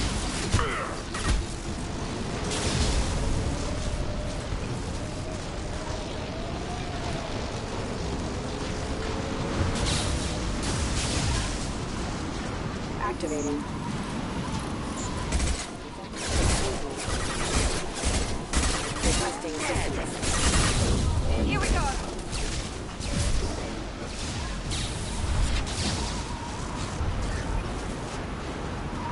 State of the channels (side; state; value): both; identical; correlation 1.00